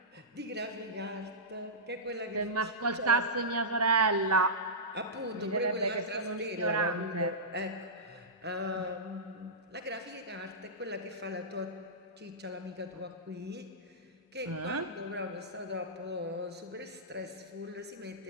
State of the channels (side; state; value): both; normal; correlation -0.16